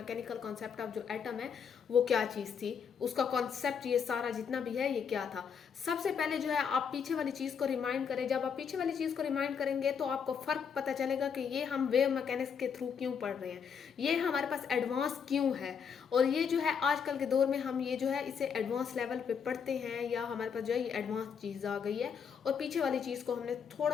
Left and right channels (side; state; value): right; quieter; 6.9 dB